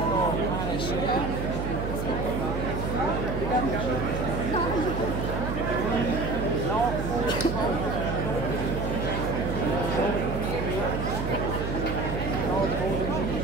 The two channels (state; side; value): noise; right; hum, 3 dB below the sound